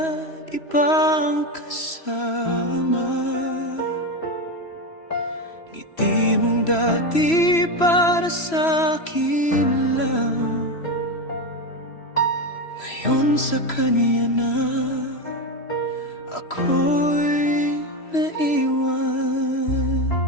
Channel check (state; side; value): late; right; 3.0 ms